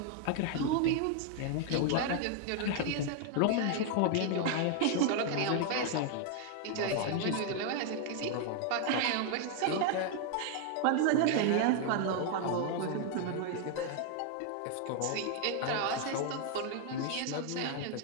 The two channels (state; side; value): different; both; correlation 0.00